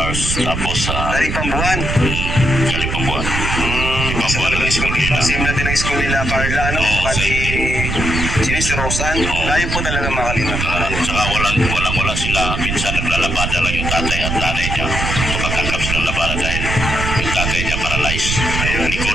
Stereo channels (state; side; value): noise; right; rumble, 2 dB below the sound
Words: Tapos, galing pang buwan. Galing pang buwan. Kasi talagang school nila. Same natin ang school nila, Carla, si Rosan. Layo po talaga mga Kalingap. Saka walang sila. Minsan naglalabada lang yung tatay at nanay niya. Kapagkakap silang labada dahil yung tatay niya paralyzed. Ayun,